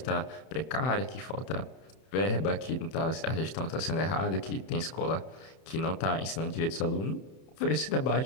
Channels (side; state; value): right; late; 31 ms